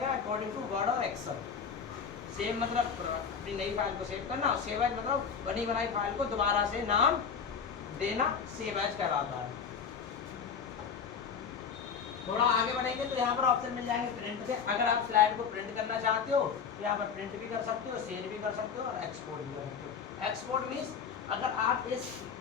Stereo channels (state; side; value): quieter; right; 6.6 dB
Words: अकॉर्डिंग टू वर्ड और एक्सेल। सेव मतलब अपनी नई फाइल को सेव करना और सेव एज मतलब बनी बनाई फाइल को दोबारा से नाम देना, सेव एज कहलाता है। थोड़ा आगे बढ़ेंगे तो यहाँ पर ऑप्शन मिल जाएंगे प्रिंट के। अगर आप स्लाइड को प्रिंट करना चाहते हो तो यहाँ पर प्रिंट भी कर सकते हो, शेयर भी कर सकते हो और एक्सपोर्ट भी कर सकते हो। एक्सपोर्ट मीन्स अगर आप इस